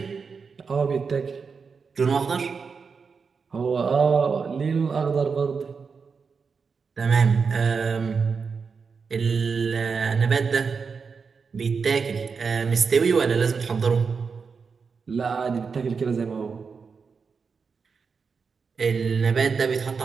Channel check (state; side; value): quieter; left; 5.4 dB